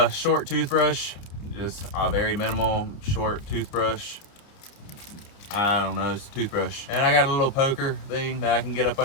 short toothbrush, just a very minimal short toothbrush. I don't know, it's a toothbrush. And I got a little poker thing that I can get up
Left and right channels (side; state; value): right; late; 29 ms